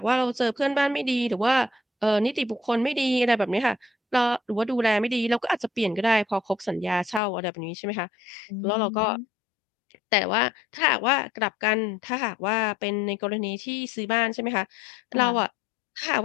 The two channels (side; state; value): right; drops out; at 7.2 s